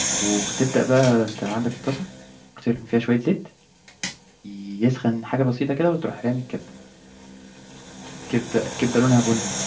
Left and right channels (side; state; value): both; identical; correlation 1.00